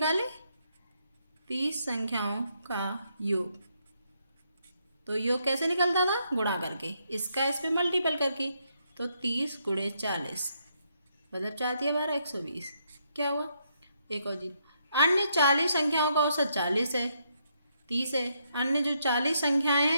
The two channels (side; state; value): both; inverted; correlation -0.76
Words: 30 संख्याओं का योग, तो योग कैसे निकलता था, गुणा करके, इसका इस पे मल्टीपल करके। तो 30 गुणे 40 मतलब 4 दिया 12 120। क्या हुआ, एक और जीरो। अन्य 40 संख्याओं का औसत 40 है, 30 है। अन्य जो 40 संख्याएं